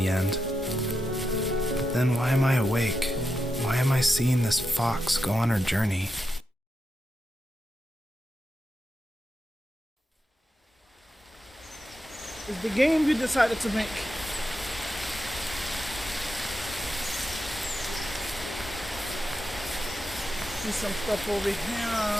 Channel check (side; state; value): both; normal; correlation 0.87